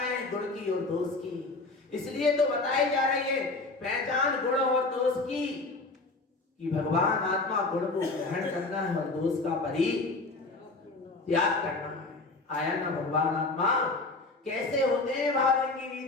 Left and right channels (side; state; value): right; quieter; 3.4 dB